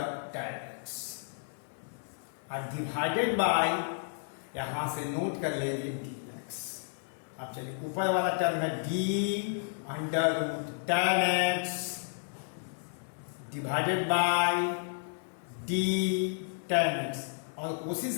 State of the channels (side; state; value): right; silent; 56 dB below the other